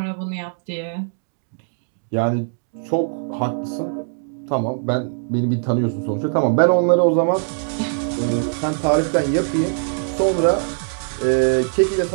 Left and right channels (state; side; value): silent; left; 65 dB below the other